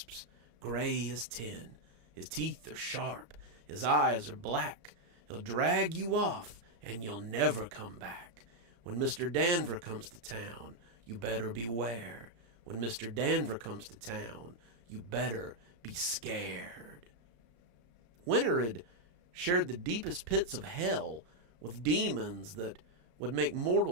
gray as tin. His teeth are sharp, his eyes are black. He'll drag you off, and you'll never come back. When Mr. Danver comes to town, you better beware. When Mr. Danver comes to town, you better be scared. Winter had shared the deepest pits of hell with demons that would make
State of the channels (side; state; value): left; late; 34 ms